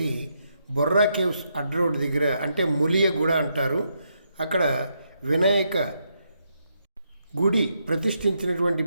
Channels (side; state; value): both; inverted; correlation -0.79